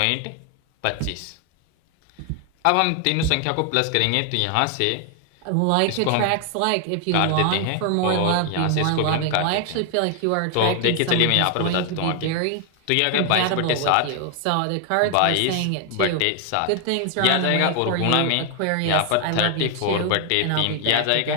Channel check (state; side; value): different; both; correlation 0.00